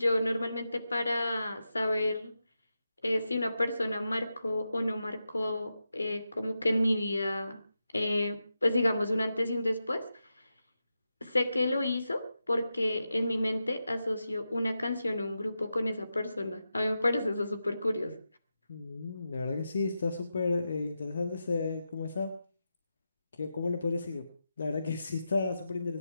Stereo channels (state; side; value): inverted; both; correlation -0.89